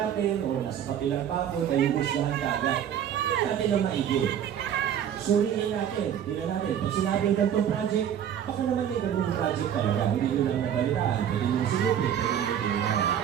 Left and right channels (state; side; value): quieter; left; 9.5 dB